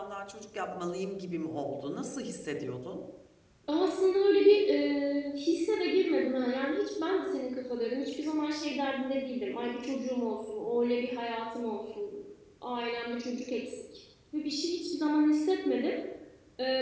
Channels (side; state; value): both; identical; correlation 1.00